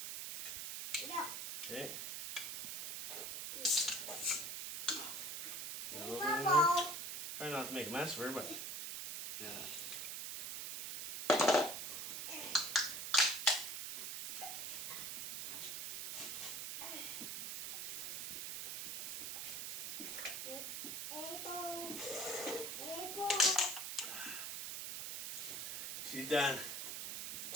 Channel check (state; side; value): noise; right; hiss, 4 dB below the sound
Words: Okay. Try not to make a mess of her, but yeah. She's done.